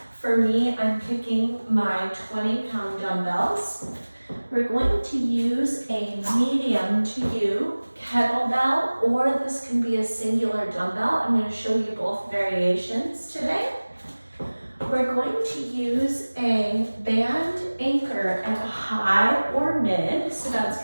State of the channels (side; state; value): both; inverted; correlation -1.00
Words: For me, I'm picking my 20-pound dumbbells. We're going to use a medium to you kettlebell, or this can be a singular dumbbell. I'm going to show you both variations today. We're going to use a band anchor at a high or mid, so that's